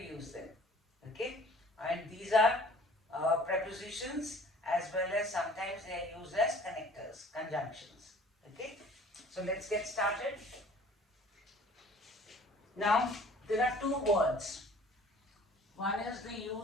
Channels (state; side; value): normal; both; correlation 0.50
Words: them. Okay? And these are prepositions as well as sometimes they are used as connectors, conjunctions. Okay? So let's get started. Now, there are two words. One is the